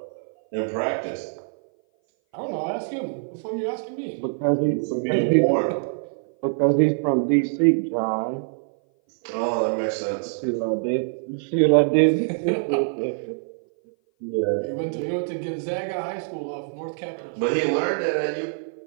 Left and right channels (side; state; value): left; silent; 57 dB below the other